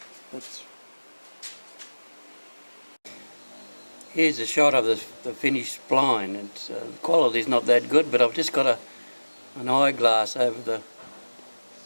here's a shot of the finished spline. It's the quality's not that good, but I've just got an eyeglass over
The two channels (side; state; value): both; inverted; correlation -1.00